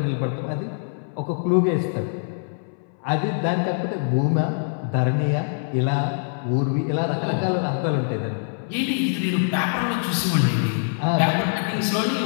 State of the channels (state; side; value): silent; right; 63 dB below the other